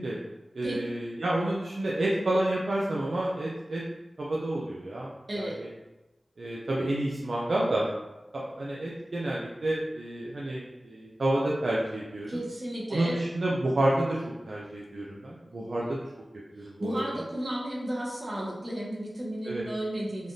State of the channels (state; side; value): normal; both; correlation 0.95